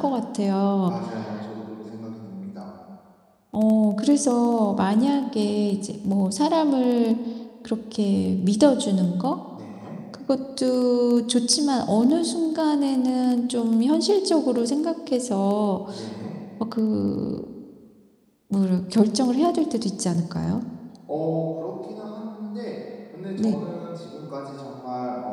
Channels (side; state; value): both; identical; correlation 1.00